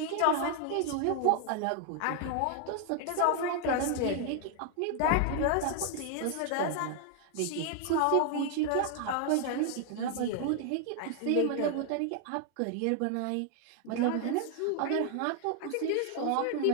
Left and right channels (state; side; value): different; both; correlation 0.00